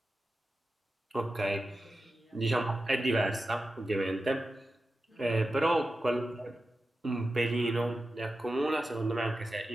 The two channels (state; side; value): normal; both; correlation 0.92